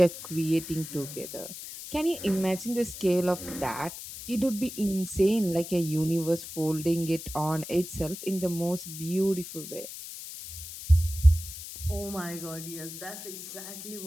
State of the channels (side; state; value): left; noise; hiss, 11 dB below the sound